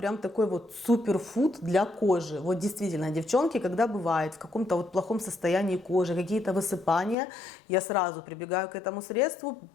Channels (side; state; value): right; drops out; at 7.2 s